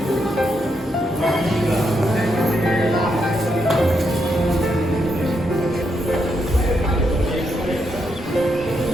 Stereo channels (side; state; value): both; normal; correlation 0.80